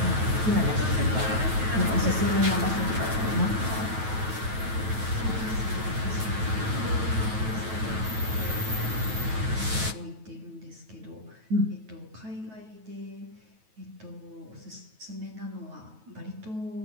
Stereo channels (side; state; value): left; late; 9.2 ms